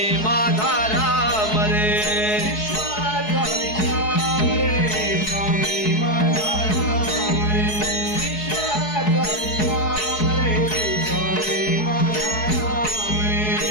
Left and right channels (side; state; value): right; late; 4.7 ms